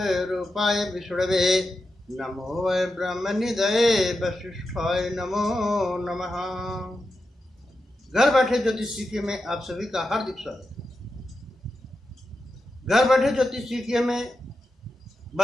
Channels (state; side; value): normal; both; correlation 0.89